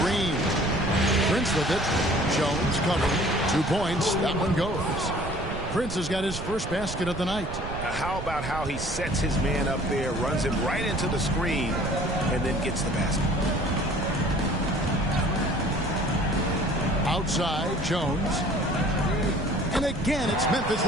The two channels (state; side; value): noise; right; rumble, 8 dB below the sound